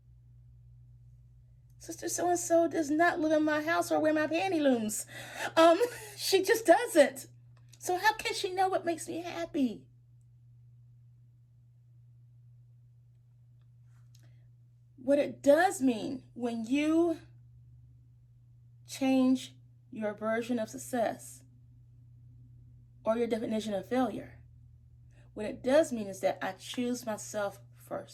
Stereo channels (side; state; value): both; identical; correlation 1.00